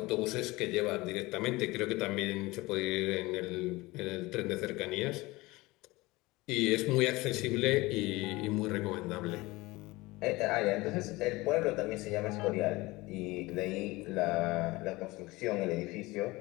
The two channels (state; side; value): quieter; right; 21.2 dB